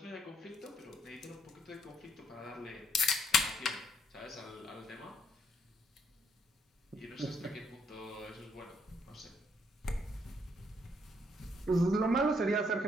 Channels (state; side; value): normal; both; correlation 0.71